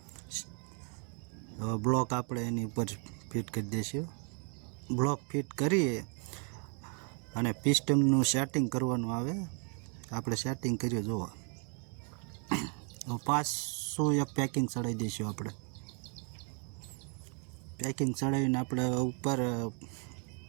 હવે બ્લોક આપણે એની ઉપર ફિટ કરી દઈશું. બ્લોક ફિટ કરીએ અને પિસ્ટનનું સેટિંગ કરવાનું આવે. આપણે સેટિંગ કરીએ. જુઓ, પાછું એક પેકિંગ ચડાવી દઈશું. આપણે પેકિંગ ચડાવીને આપણે ઉપર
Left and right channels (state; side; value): quieter; left; 39.9 dB